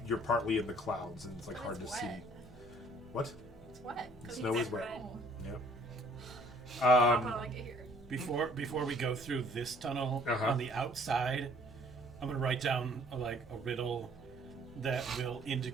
you're partly in the clouds, and it's like But hard it's to see. wet. What? It's wet. 'Cause Snow it's is wet. Oh, Yep. I'll probably get here. Before we go through this tunnel, Uh-huh. on the outside, I'm gonna write down like a riddle that will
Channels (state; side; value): noise; left; hum, 22 dB below the sound